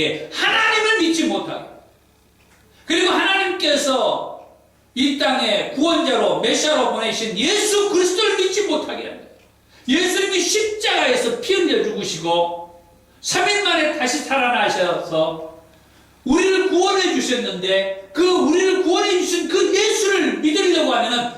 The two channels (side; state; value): both; identical; correlation 1.00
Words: 하나님을 믿지 못하게, 그리고 하나님께서 이 땅에 구원자로 메시아로 보내신 예수 그리스도를 믿지 못하게 합니다. 예수님이 십자가에서 피 흘려 죽으시고 3일 만에 다시 살아나셔서 우리를 구원해 주셨는데, 그 우리를 구원해 주신 그 예수를 믿으려고 하면은